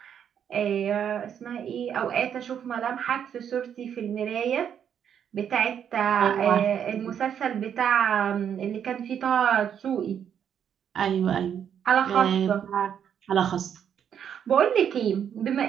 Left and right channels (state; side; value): quieter; left; 8.6 dB